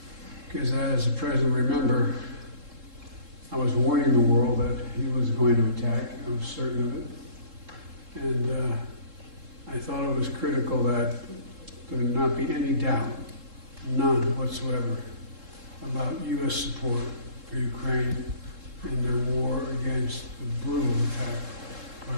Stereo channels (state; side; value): late; left; 3.7 ms